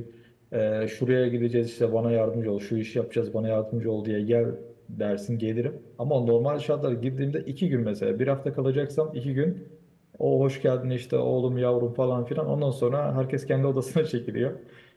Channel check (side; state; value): both; identical; correlation 1.00